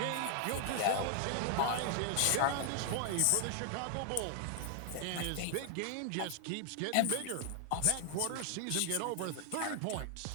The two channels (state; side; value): different; both; correlation 0.00